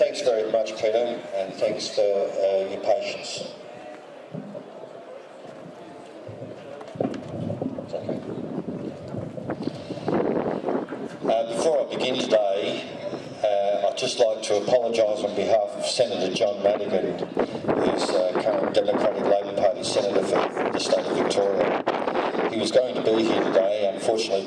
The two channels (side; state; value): both; identical; correlation 1.00